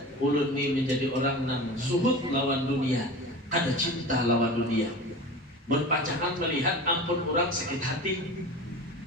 ulun ini menjadi orang yang suhud lawan dunia, ada cinta lawan dunia. Berpacangan melihat ampun orang sakit hati,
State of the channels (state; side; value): normal; both; correlation 0.33